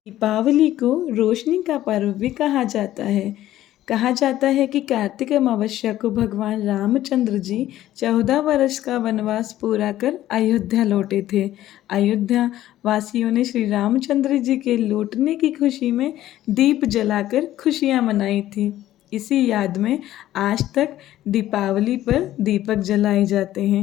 को रोशनी का पर्व भी कहा जाता है। कहा जाता है कि कार्तिक अमावस्या को भगवान रामचंद्र जी 14 वर्ष का वनवास पूरा कर अयोध्या लौटे थे। अयोध्या वासियों ने श्री रामचंद्र जी के लौटने की खुशी में दीप जलाकर खुशियां मनाई थी। इसी याद में आज तक दीपावली पर दीपक जलाए जाते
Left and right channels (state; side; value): quieter; right; 13.7 dB